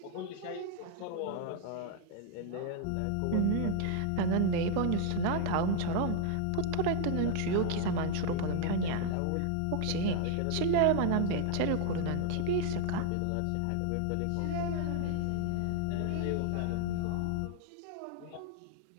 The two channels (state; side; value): different; both; correlation 0.00